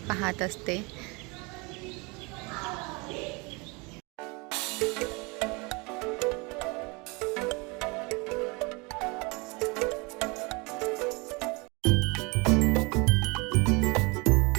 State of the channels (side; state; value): left; quieter; 27.9 dB